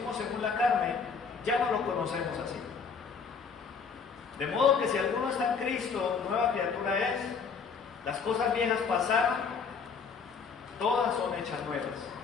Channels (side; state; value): right; quieter; 5.7 dB